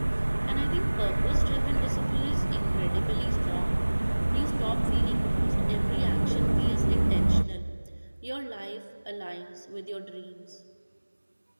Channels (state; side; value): inverted; both; correlation -1.00